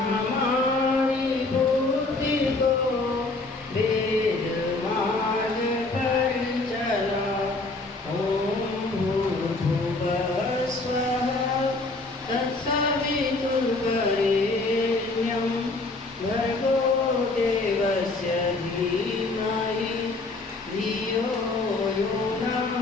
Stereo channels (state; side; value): quieter; right; 3.2 dB